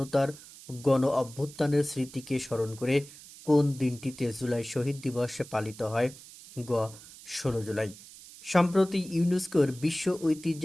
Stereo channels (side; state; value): right; noise; hiss, 18 dB below the sound